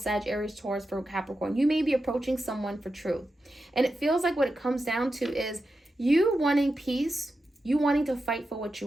Aries, Taurus, Virgo, Capricorn. You may be approaching someone for truth. And it feels like what it comes down to is you wanting peace, you wanting to fight for what you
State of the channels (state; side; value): normal; both; correlation 0.90